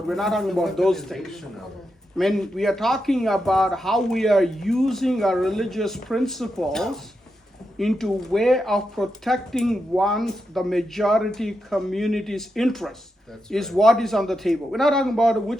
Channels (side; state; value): both; normal; correlation 0.86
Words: We're not talking about those things. When we are talking about how we are using our religious principles into way of protecting the majority community's interests is what is on the table. We're not talking about